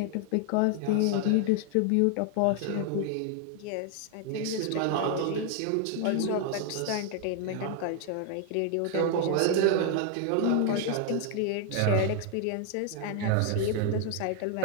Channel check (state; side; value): different; both; correlation 0.00